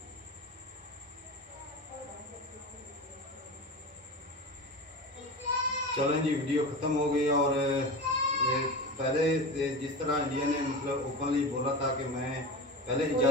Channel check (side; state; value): both; normal; correlation 0.28